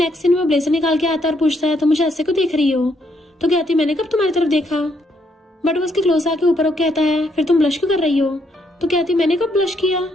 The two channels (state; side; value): normal; both; correlation 0.73